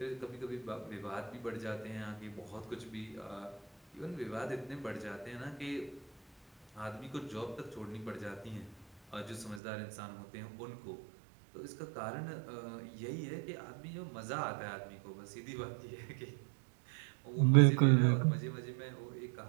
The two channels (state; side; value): drops out; left; at 9.6 s